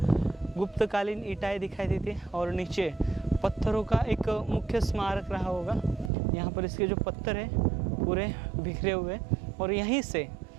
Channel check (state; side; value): drops out; left; at 6.1 s